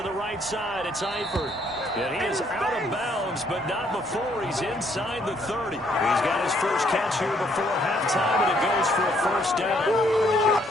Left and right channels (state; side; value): normal; both; correlation 0.68